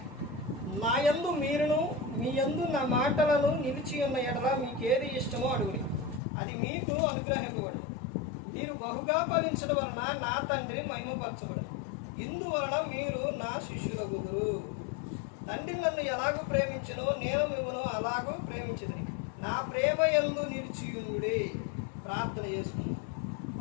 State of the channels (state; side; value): drops out; right; at 6.2 s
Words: నా యందు మీరును మీ యందు నా మాటలను నిలిచి ఉన్న ఎడల మీకేది ఇష్టమో అడుగుడి, అది మీకు అనుగ్రహింపబడు. మీరు బహుగా ఫలించడం వలన నా తండ్రి మహిమపరచబడు. ఇందువలన మీరు నా శిష్యులగుదురు. తండ్రి నన్ను ఎలాగూ ప్రేమించునో నేను మిమ్మల్ని అలాగూ ప్రేమించుదును. నా ప్రేమ యందు నిలిచియుండుడి. ప్రార్థన చేసుకుందాం.